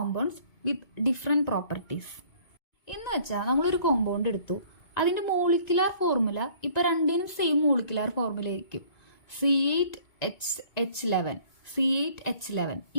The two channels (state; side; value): late; right; 1.9 ms